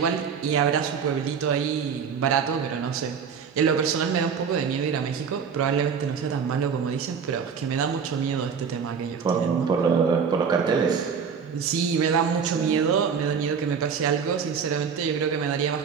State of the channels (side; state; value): left; quieter; 6.5 dB